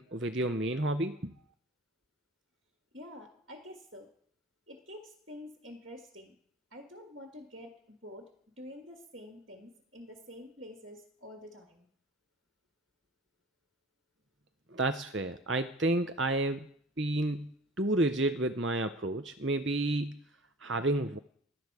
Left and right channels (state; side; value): normal; both; correlation 0.42